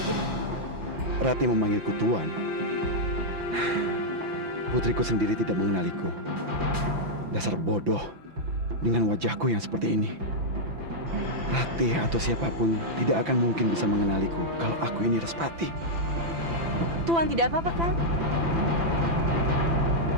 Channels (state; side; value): late; left; 5.9 ms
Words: Ratih memanggilku Tuan. Putriku sendiri tidak mengenaliku. Dasar bodoh dengan wajahku yang seperti ini. Ratih atau siapapun tidak akan mungkin bisa mengenaliku kalau aku ini Respati. Tuan tidak apa-apa kan?